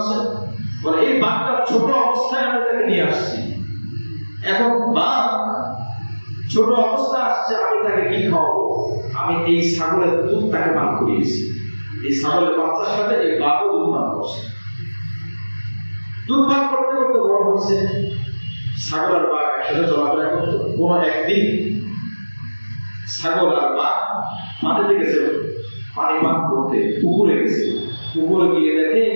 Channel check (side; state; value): both; inverted; correlation -1.00